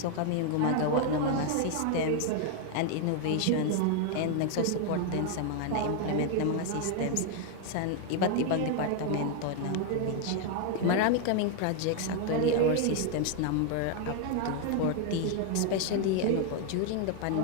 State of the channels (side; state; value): both; different; correlation 0.01